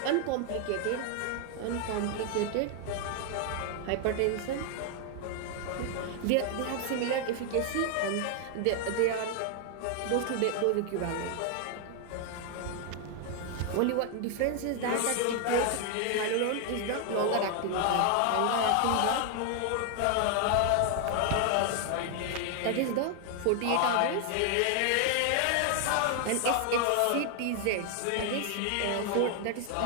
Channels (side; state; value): both; different; correlation 0.00